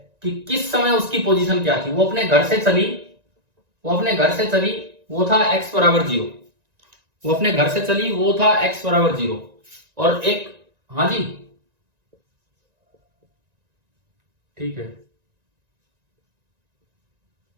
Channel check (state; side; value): late; left; 1.9 ms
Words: कि किस समय उसकी पोजीशन क्या थी। वो अपने घर से चली, वो अपने घर से चली, वो था x बराबर 0, वो अपने घर से चली, वो था x बराबर 0, और एक, हाँ जी ठीक है,